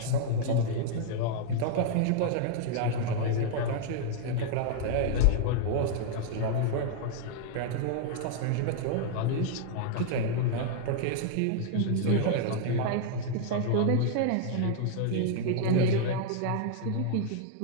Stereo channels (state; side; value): different; both; correlation -0.01